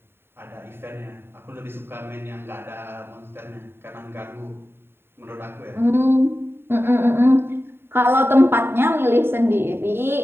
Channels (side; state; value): left; late; 0.11 ms